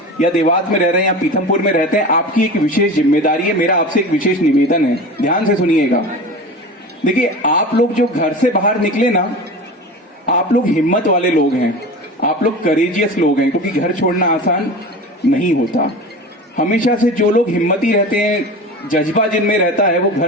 या देवास में रह रहे हैं या पीथमपुर में रहते हैं, आपकी एक विशेष जिम्मेदारी है। मेरा आपसे एक विशेष निवेदन है, ध्यान से सुनिएगा। देखिए, आप लोग जो घर से बाहर निकले ना, आप लोग हिम्मत वाले लोग हैं, आप लोग करेजियस लोग हैं, क्योंकि घर छोड़ना आसान नहीं होता। हमेशा से जो लोग हिम्मती रहते हैं, जज्बा जिनमें रहता है, वो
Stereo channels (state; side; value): normal; both; correlation 0.32